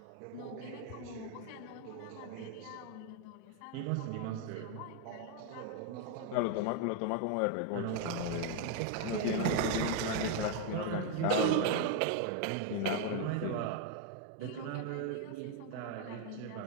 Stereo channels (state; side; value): different; both; correlation 0.01